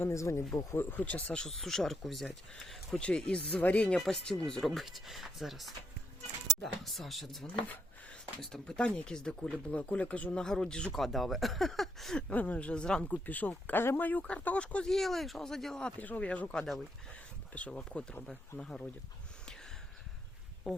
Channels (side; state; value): both; normal; correlation 0.76